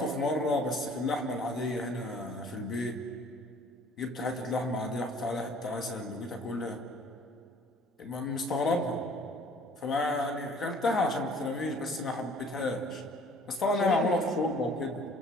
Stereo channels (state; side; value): normal; both; correlation 0.54